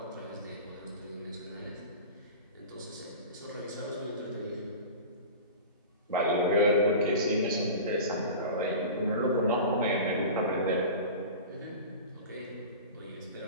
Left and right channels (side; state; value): both; inverted; correlation -0.34